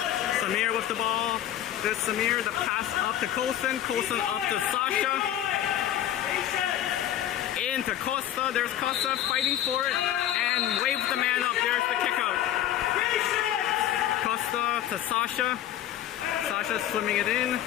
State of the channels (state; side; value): quieter; right; 11.8 dB